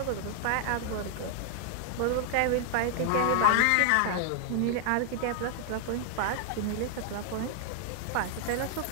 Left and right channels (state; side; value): different; both; correlation 0.00